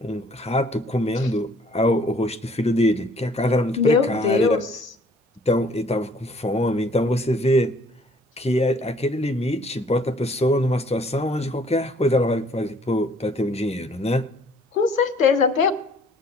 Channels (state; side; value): normal; both; correlation 0.58